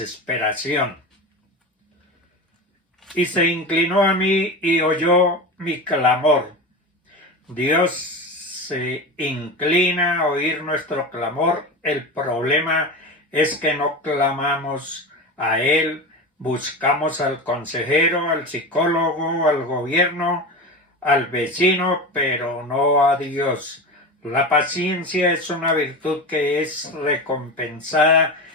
Y se inclinó a mí y oyó mi clamor. Dios se inclina a oír nuestro clamor. El problema es que no clamamos a Él, buscamos al consejero, al psicólogo, al gobierno, al vecino, pero no a Dios. La paciencia es una virtud que es recompensada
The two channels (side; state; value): both; normal; correlation 0.26